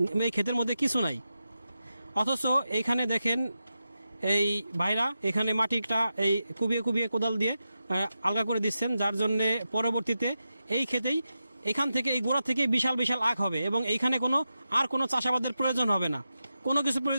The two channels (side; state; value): both; inverted; correlation -0.90